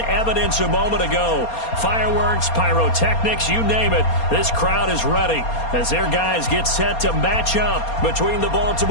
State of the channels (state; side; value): late; right; 4.3 ms